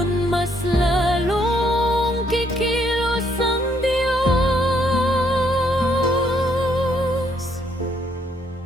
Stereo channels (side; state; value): both; normal; correlation 0.70